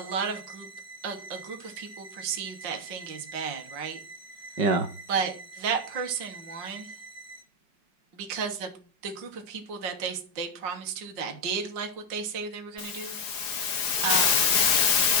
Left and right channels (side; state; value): left; late; 4.9 ms